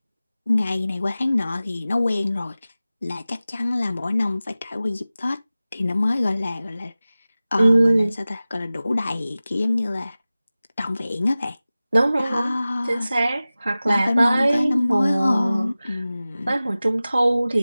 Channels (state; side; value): inverted; both; correlation -0.97